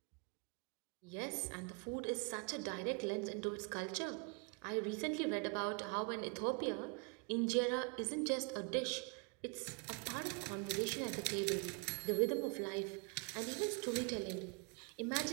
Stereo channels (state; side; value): quieter; left; 32.6 dB